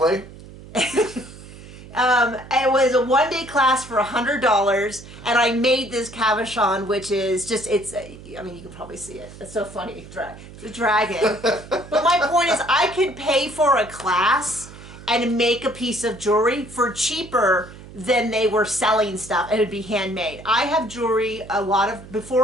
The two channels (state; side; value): noise; right; hum, 17 dB below the sound